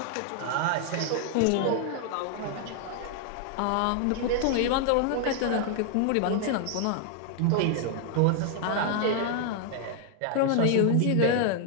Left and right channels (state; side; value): different; both; correlation 0.00